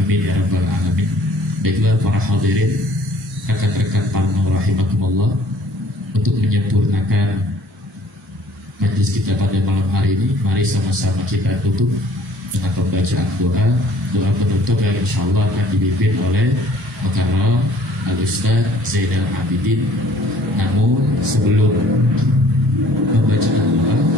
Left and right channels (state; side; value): normal; both; correlation 0.56